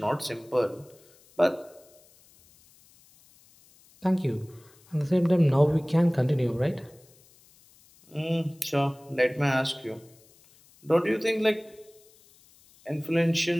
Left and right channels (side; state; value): left; noise; hiss, 29 dB below the sound